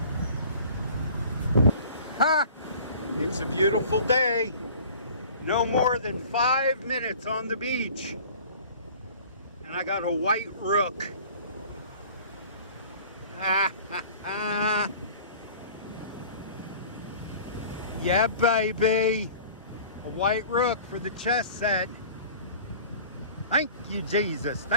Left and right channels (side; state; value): both; inverted; correlation -0.45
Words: Ha! It's a beautiful day. No more than 5 minutes on the beach. And I got a white rook. Ha ha ha. Yeah, baby. A white rook for the chess set. Thank you, Jesus.